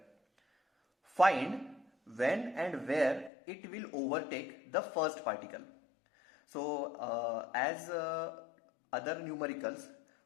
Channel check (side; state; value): right; drops out; at 3.3 s